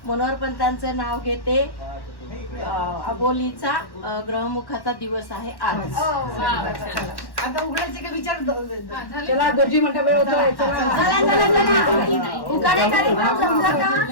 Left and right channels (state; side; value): late; right; 1.1 ms